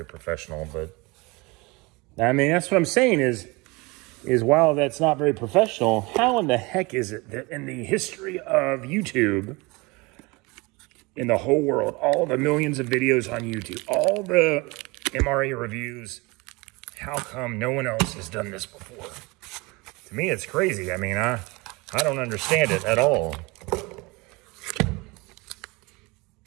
professional, but I mean, that's what I'm saying is while that's not very professional, how in the heck is it that in the history of YouTube, in the whole world, all the millions of videos on YouTube, all the MRE reviews, how come no one else has done this before? To me, it's crazy. I mean, I don't understand it at all.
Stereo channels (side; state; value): left; quieter; 25.3 dB